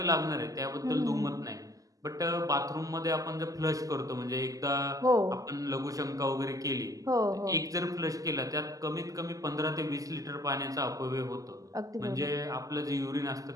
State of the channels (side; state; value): left; late; 0.17 ms